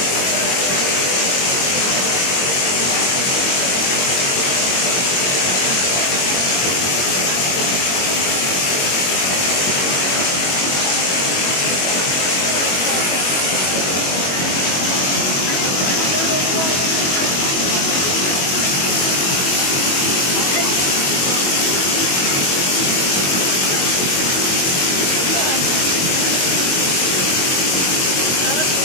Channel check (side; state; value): right; late; 22 ms